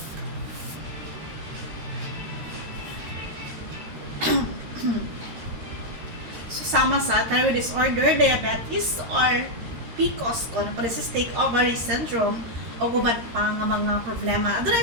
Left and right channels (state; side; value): late; left; 13 ms